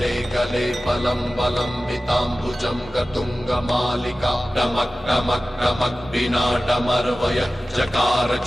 कले फलं बलम्बिताम्बुजं गतुङ्गमालिका टमक् टमक् टमक् विनाटमर्वय चकार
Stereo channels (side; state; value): both; normal; correlation 0.96